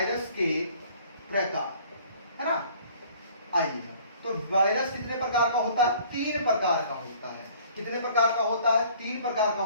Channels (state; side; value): inverted; both; correlation -0.54